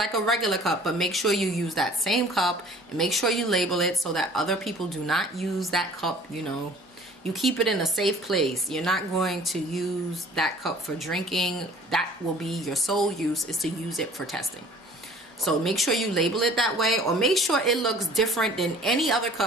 a regular cup, but make sure you use that same cup and make sure you label it so that other people do not use that cup. You know, you keep it in a safe place. You're not going to use that cup for drinking. That will be your sole use, is to use it for testing. So make sure you label it that way, or make sure it looks different than any other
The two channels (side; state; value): both; normal; correlation 0.50